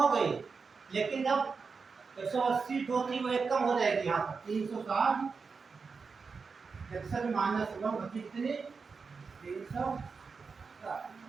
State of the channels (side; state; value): left; quieter; 5.0 dB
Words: गई, लेकिन जब 180 जो थी वो एक कम हो जाएगी, यहाँ पर 360 -1 बची कितनी, 360।